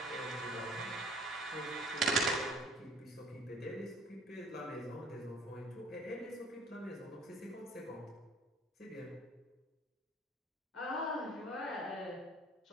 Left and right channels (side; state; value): both; normal; correlation 0.52